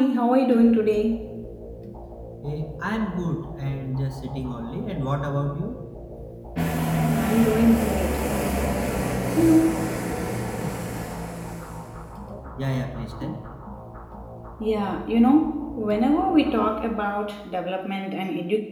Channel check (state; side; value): identical; both; correlation 1.00